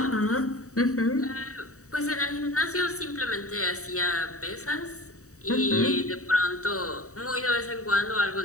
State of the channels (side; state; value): right; late; 0.65 ms